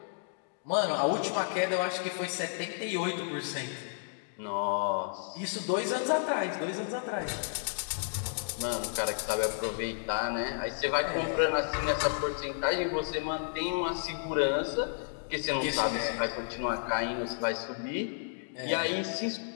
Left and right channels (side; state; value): right; silent; digital silence